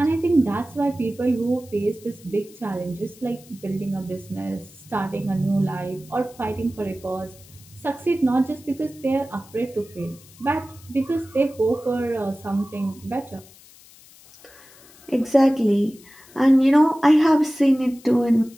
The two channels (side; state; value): left; noise; hiss, 24 dB below the sound